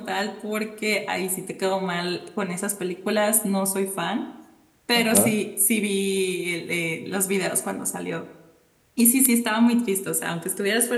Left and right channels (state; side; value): identical; both; correlation 1.00